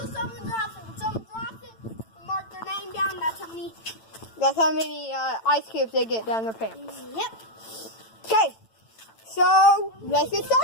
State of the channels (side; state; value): right; late; 9.0 ms